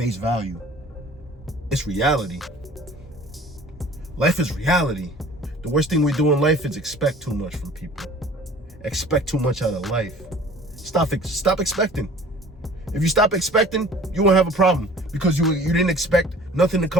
value. It's reality. Life is reality. The worst thing we do in life is expect too much from people. Expect too much out of life. Stop expecting. If you stop expecting, you won't have a problem because you didn't expect nothing to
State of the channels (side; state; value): both; normal; correlation 0.48